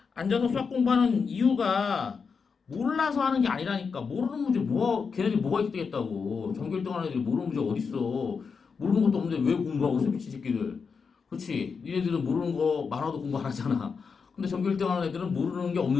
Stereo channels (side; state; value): right; quieter; 5.5 dB